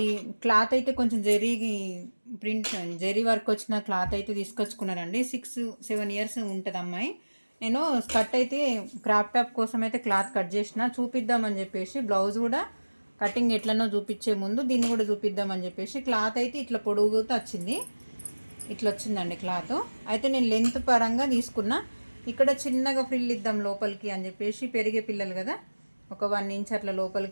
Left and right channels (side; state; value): both; inverted; correlation -1.00